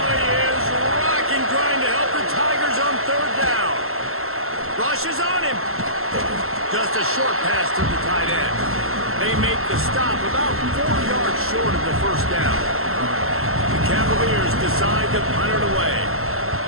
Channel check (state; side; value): late; left; 0.62 ms